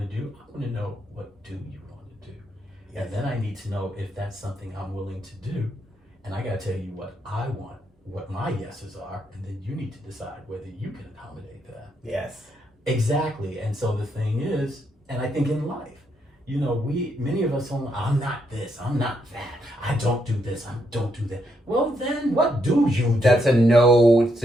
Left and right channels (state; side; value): normal; both; correlation 0.77